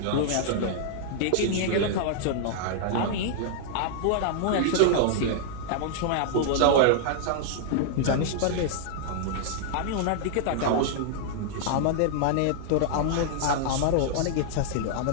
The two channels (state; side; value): different; both; correlation -0.01